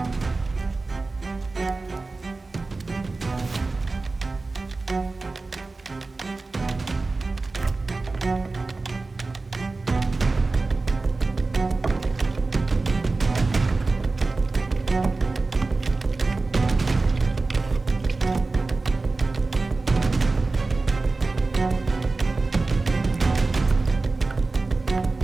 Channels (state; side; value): quieter; left; 3.6 dB